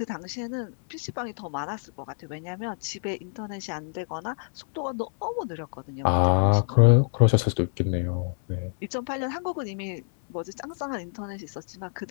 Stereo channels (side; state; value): right; silent; 60 dB below the other